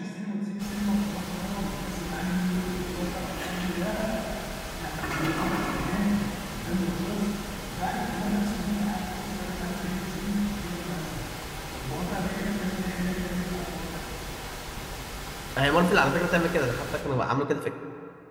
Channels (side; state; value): both; identical; correlation 1.00